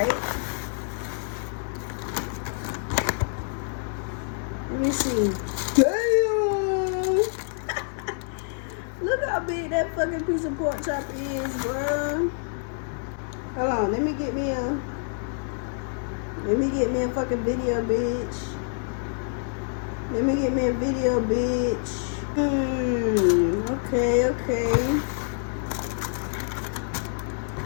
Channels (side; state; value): right; silent; 60 dB below the other